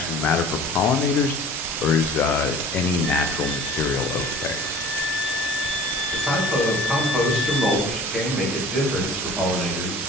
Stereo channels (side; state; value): both; normal; correlation 0.44